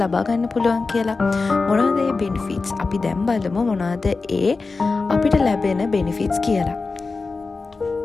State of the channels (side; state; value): right; quieter; 4.0 dB